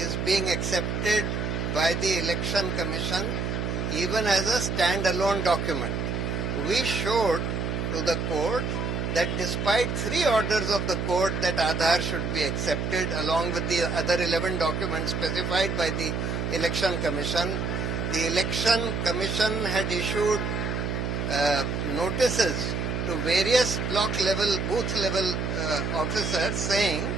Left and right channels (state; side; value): noise; right; hum, 1 dB below the sound